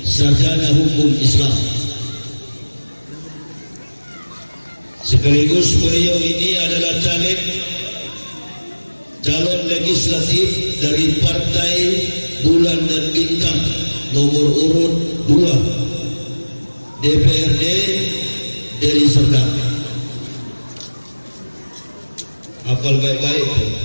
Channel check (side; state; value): both; inverted; correlation -1.00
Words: sarjana hukum Islam. Sekaligus beliau ini adalah calon legislatif dari Partai Bulan dan Bintang nomor urut 2 DPRD Deli Serdang. Hafal baik-baik.